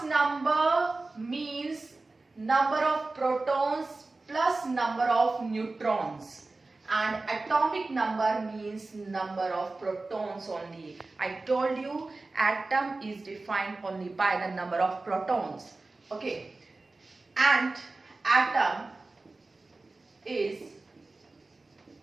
number means number of protons plus number of neutrons, and atomic number means number of protons only. I told you atom is defined only by the number of protons. Okay. And atom is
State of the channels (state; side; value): quieter; left; 3.4 dB